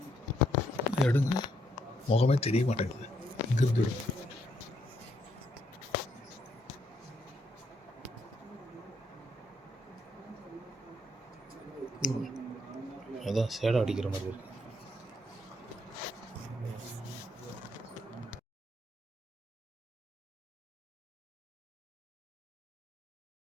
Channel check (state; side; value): normal; both; correlation 0.73